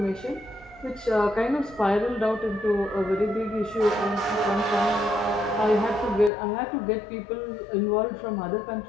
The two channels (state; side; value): drops out; right; at 6.3 s